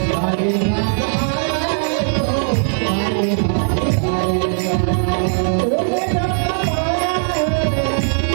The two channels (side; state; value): left; silent; digital silence